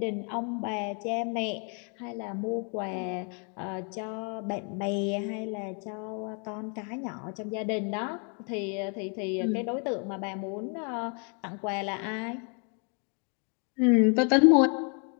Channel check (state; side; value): quieter; right; 38.5 dB